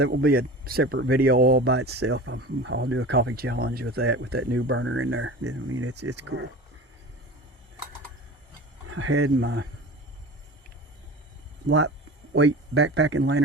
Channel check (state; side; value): normal; both; correlation 0.35